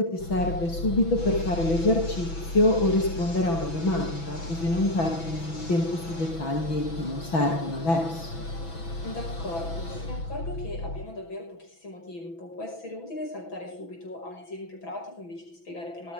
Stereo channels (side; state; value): right; late; 6.0 ms